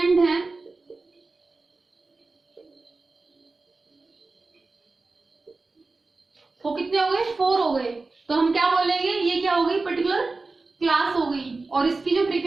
हैं वो कितने हो गए, 4 हो गए. तो हम क्या बोलेंगे, ये क्या हो गई, पर्टिकुलर क्लास हो गई, और इसकी जो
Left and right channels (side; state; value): left; quieter; 3.6 dB